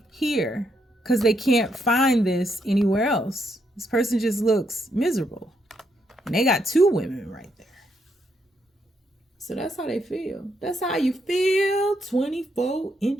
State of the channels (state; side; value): normal; both; correlation 0.77